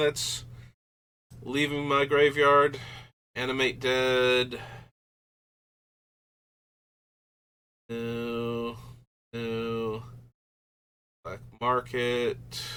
leaving my graveyard? Animate Dead. No. No. Black Market.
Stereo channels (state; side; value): identical; both; correlation 1.00